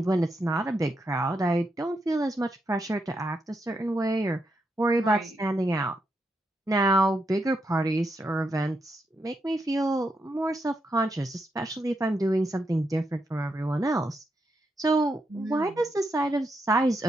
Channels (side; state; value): both; normal; correlation 0.82